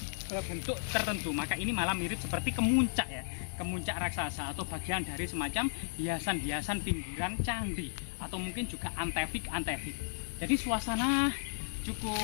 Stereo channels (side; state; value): right; silent; digital silence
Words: bentuk tertentu. Maka ini malah mirip seperti kemuncak ya, kemuncak raksasa atau bagian dari semacam hiasan-hiasan pinggiran candi, atau mungkin juga antefik. Jadi suasana